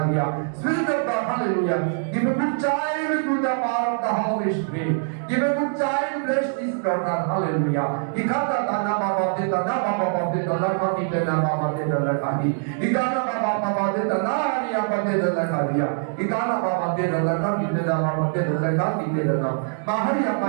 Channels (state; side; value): silent; left; digital silence